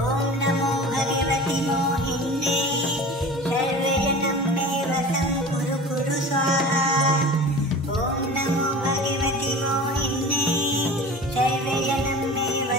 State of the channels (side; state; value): both; normal; correlation 0.37